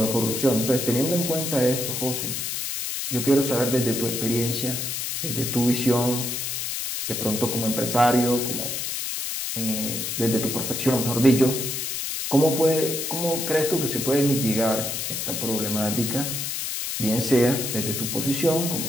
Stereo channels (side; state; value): left; noise; hiss, 3 dB below the sound